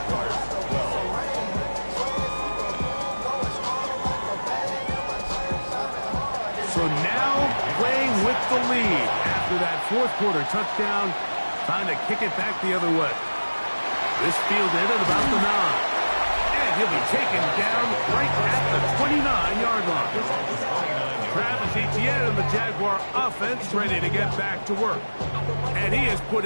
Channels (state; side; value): inverted; both; correlation -1.00